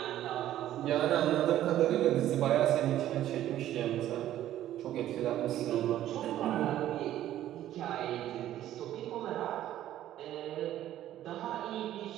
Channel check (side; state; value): left; quieter; 12.7 dB